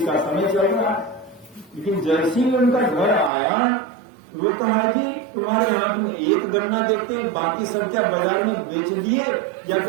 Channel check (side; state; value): left; drops out; at 3.3 s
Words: का समय चल रहा है। लेकिन जैसे ही उनका घर आया वो कहा जी तुम्हारे हाथ में एक गन्ना देखते हैं, बाकी सब क्या बाजार में बेच दिए या